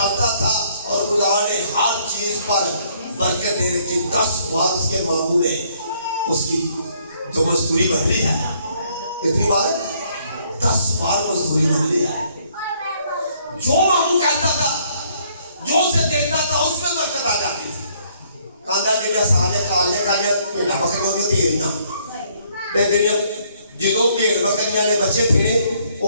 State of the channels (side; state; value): both; inverted; correlation -0.66